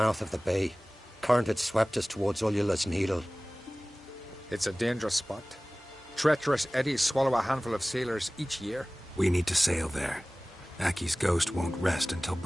of the bay. Current had swept us towards Ullula's Needle. It's a dangerous spot. Treacherous eddies swallow a handful of sailors each year. We need to sail there. Aki's ghost won't rest until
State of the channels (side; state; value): both; normal; correlation 0.98